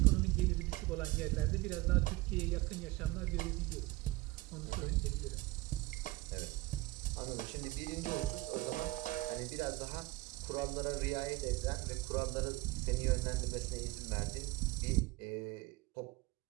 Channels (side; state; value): left; quieter; 20.5 dB